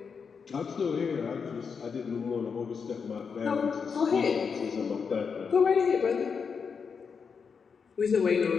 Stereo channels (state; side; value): quieter; right; 5.9 dB